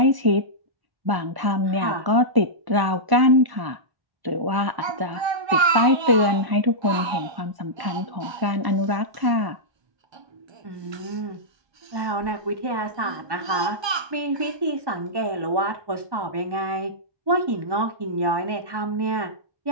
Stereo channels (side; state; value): left; late; 1.2 ms